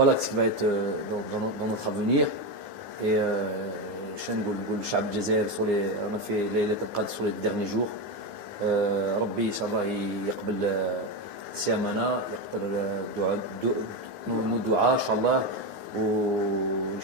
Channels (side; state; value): left; late; 9.7 ms